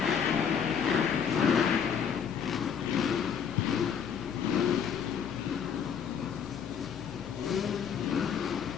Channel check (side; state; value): right; quieter; 7.5 dB